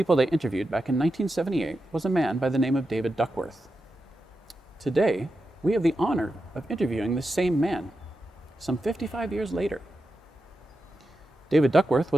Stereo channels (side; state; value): both; normal; correlation 0.89